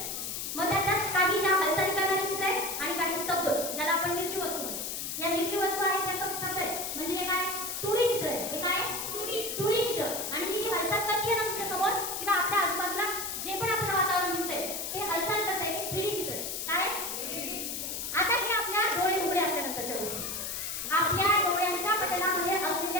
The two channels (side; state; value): left; noise; hiss, 4 dB below the sound